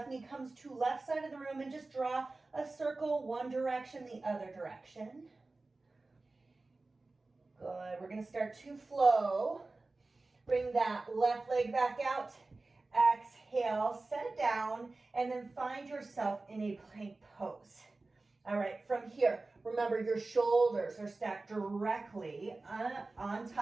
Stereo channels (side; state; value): left; quieter; 3.3 dB